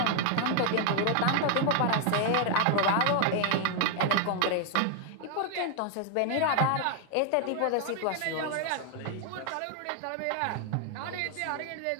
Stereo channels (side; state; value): both; different; correlation 0.00